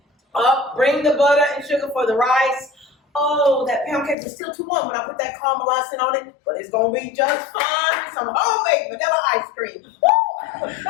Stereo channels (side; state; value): right; drops out; at 4.2 s